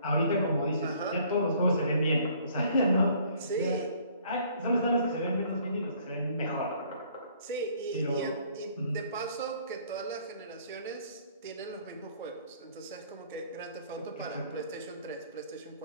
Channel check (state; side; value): inverted; both; correlation -0.58